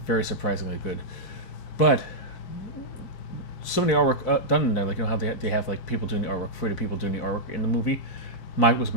Very surprisingly good. But some of the artwork done in there, like how they have like people doing the artwork for the people doing the artwork in the movie, was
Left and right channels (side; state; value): right; late; 5.8 ms